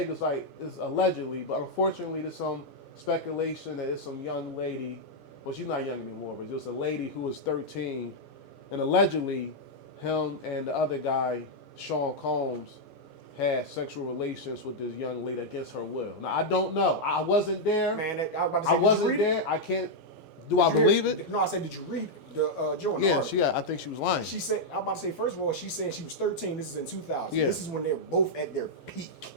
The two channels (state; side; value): late; right; 10 ms